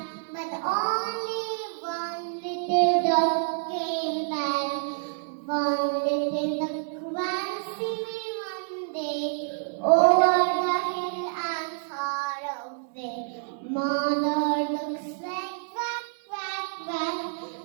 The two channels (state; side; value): silent; left; digital silence